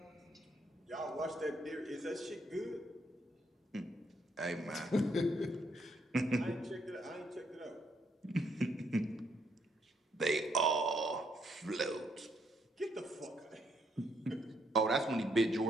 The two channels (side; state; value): both; normal; correlation 0.73